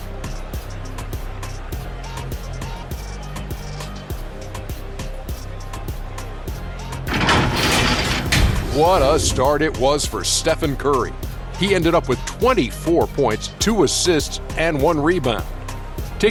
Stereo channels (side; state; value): both; identical; correlation 1.00